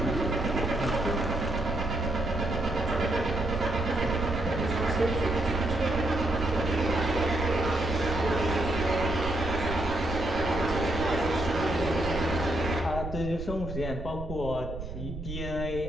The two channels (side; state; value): right; noise; rumble, 8 dB below the sound